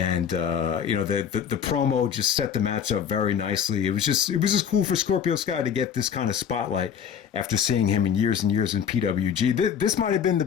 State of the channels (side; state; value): right; quieter; 8.1 dB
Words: the promo just set the match up very nicely. It was just cool for Scorpio Sky to get this kind of spotlight after seeing him in years and years in PWG. This might have been the